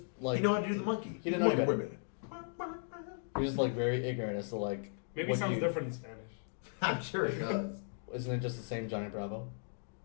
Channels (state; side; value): silent; right; digital silence